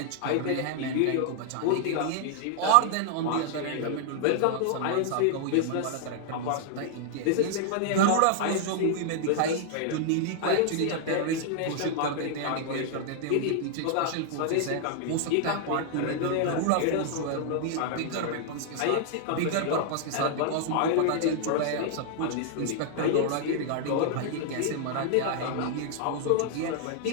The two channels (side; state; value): both; different; correlation -0.01